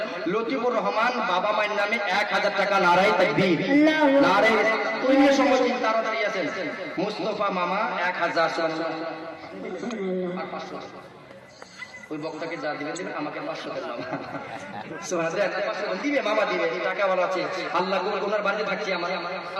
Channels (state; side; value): identical; both; correlation 1.00